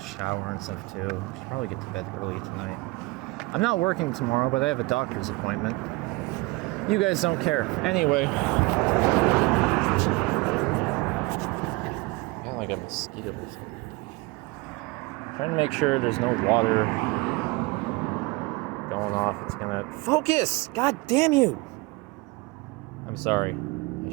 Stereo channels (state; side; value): quieter; left; 24.0 dB